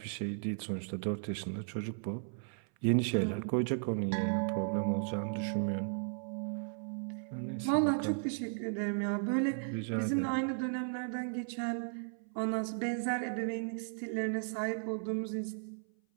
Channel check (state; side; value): silent; left; 54 dB below the other